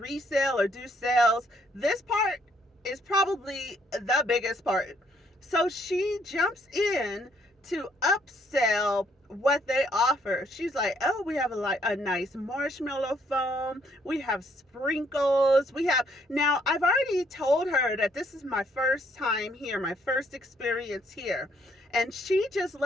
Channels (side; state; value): both; normal; correlation 0.69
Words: or do sales. This part is probably the biggest part. So she jumps in to upsell what they offer. She's like, oh, we have a nice marshmallow foam. We have sprinkles. Now I've already told her that this is my first time here, my first experience here. And she just